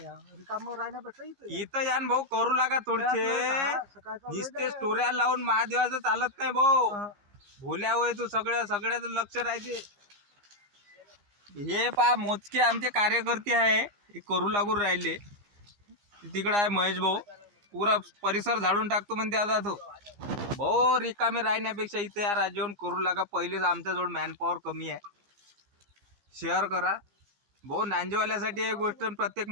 रिकामं राहण्यापेक्षा इथं या भाऊ करू लागा थोडसे. निस्ते स्टोऱ्या लावून महादेवाचं चालत नाही भाऊ. भोल्या होय तू. सगळ्याचं लक्ष राहते. हे पा मोजके आमचे कार्यकर्ते आहे. हे करू लागून राहिले. तिकडे आहे महेश भाऊ. पुरा परिसर झाडून टाकतो म्हणते आता तो. भाऊ रिकामे राहण्यापेक्षा इथे या राज्यावरून करू लागा. पहिलेच आमच्याजवळ मॅनपॉवर कमी आहे. शेअर करा भाऊ. नांजेवाल्यासाठी ही गोष्ट प्रत्येक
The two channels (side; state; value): left; late; 15 ms